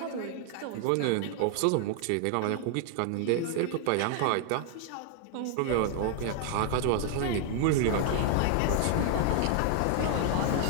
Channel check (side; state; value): both; different; correlation 0.00